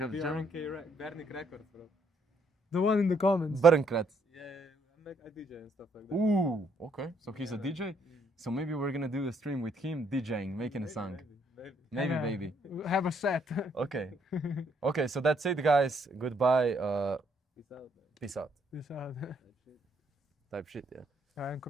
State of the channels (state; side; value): normal; both; correlation 0.71